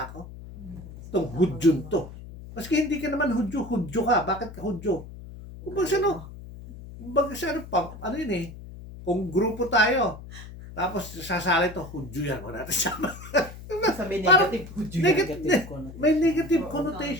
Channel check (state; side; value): noise; left; hum, 14 dB below the sound